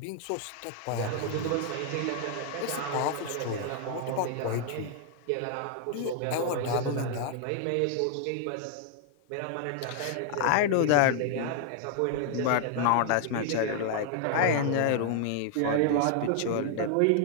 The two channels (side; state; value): both; different; correlation 0.00